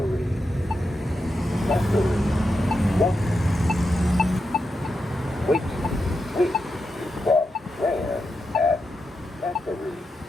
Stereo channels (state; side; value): normal; both; correlation 0.87